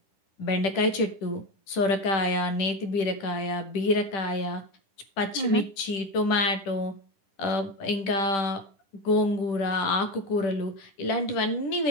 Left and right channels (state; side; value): late; right; 10 ms